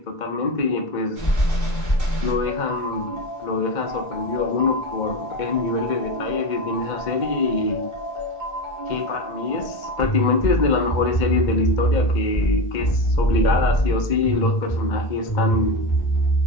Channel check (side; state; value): right; late; 2.1 ms